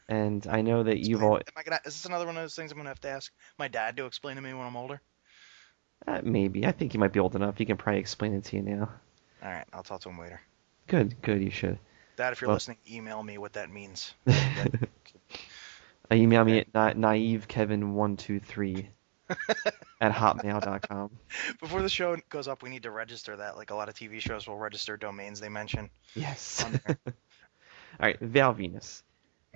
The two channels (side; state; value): left; silent; 56 dB below the other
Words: and I know that you've all Is this another one of those things I'm gonna have to ask my dad to explain to me when I'm older? maybe. I think you might be old enough. He can probably explain it to you now. All right, I'll talk to him later. Good. You should. Dad, if you're Well- listening, email me what that means. Email me Okay. at naivekevin123 at hotmail.com. Before the show goes up, we need to register that. Like a lot of TV shows will register domains they mention Yes. on there. All right, Val Venus.